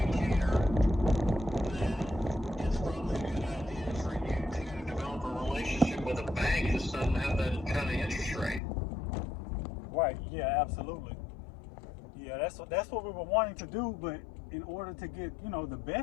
that it's probably a good idea for you to develop a relationship with a bank that doesn't have that kind of interest rate. Right. Yeah. Absolutely. Yeah. That's what we were wanting to do, but in order to get the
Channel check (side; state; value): right; drops out; at 8.6 s